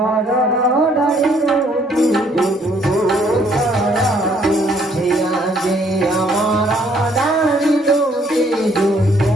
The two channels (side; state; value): both; normal; correlation 0.65